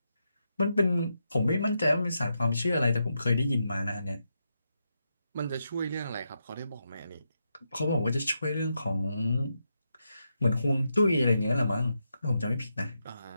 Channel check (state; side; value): inverted; both; correlation -0.84